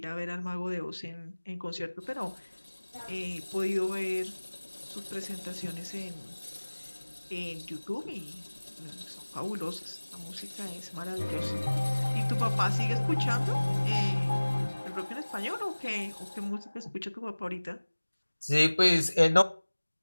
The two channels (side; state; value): both; inverted; correlation -1.00